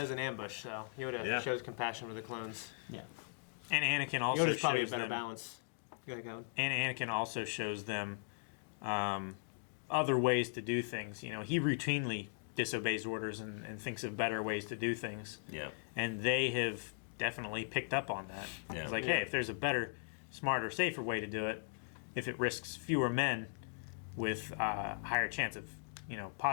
an ambush, so Yoda Yeah. shows compassion for the clones. Yeah. And Anakin also Yoda's probably a shows better them, balance. Go. and Anakin also shows them other ways to do things. He routinely disobeys orders and thinks of better ways to do things. Yeah. And they have definitely picked up on that. Yeah. It's like, hey, if there's a better, smarter, safer way to do it, if it risks fewer men with a higher chance of,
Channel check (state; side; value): silent; right; digital silence